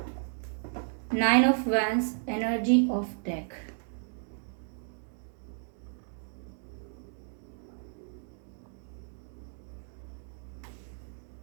nine of wands, energy of deck.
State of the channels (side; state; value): left; silent; 56 dB below the other